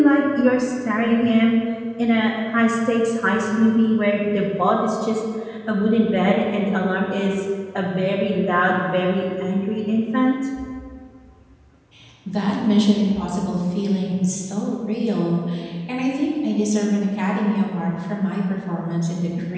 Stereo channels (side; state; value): both; identical; correlation 1.00